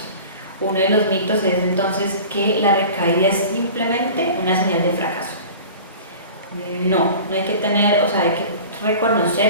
Uno de los mitos es entonces que la recaída es simplemente una señal de fracaso. No hay que tener, o sea, hay que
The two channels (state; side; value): inverted; both; correlation -0.39